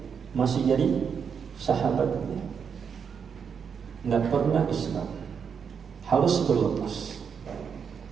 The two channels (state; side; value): quieter; left; 6.8 dB